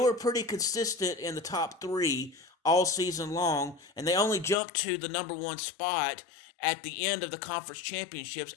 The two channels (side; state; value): right; drops out; at 4.5 s